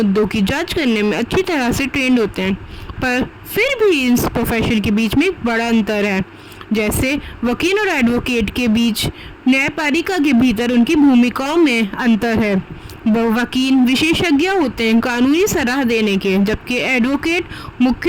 की जांच करने में अच्छी तरह से ट्रेंड होते हैं। पर फिर भी इस प्रोफेशन के बीच में एक बड़ा अंतर है। जैसे वकील और एडवोकेट के बीच न्यायपालिका के भीतर उनकी भूमिकाओं में अंतर है। वकील विशेषज्ञ होते हैं कानूनी सलाह देने के, जबकि एडवोकेट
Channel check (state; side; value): identical; both; correlation 1.00